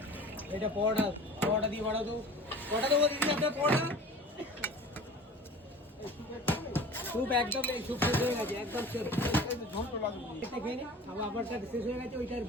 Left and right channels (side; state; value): both; normal; correlation 0.41